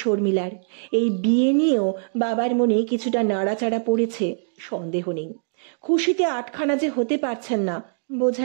শর্মিলার। এই বিয়ে নিয়েও বাবার মনে কিছুটা নাড়াচাড়া পড়েছে, সন্দেহ নেই। খুশিতে আটখানা যে হতে পারছেন না,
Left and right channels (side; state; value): left; silent; digital silence